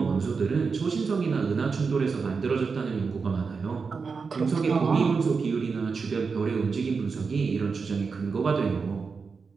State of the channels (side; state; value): left; quieter; 5.0 dB